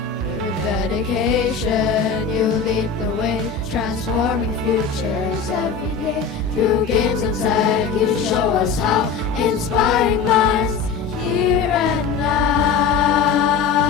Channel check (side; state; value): right; quieter; 5.9 dB